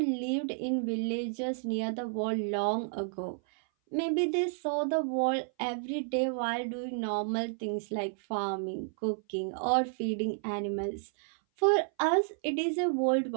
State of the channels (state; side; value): silent; left; 57 dB below the other